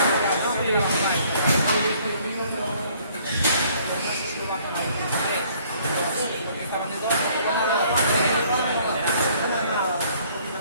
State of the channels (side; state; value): both; inverted; correlation -0.60